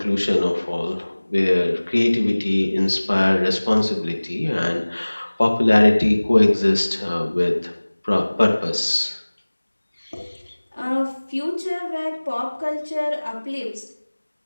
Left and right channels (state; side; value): inverted; both; correlation -1.00